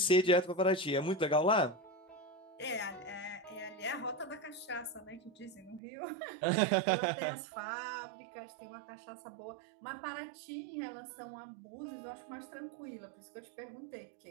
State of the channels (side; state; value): left; drops out; at 5.8 s